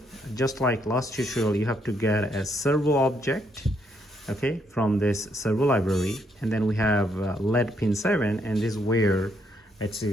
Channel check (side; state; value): both; normal; correlation 0.74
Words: Just like last tutorial, you have to get a servo object, okay, from this servo library, and then we have LED pin 7, and this is where it's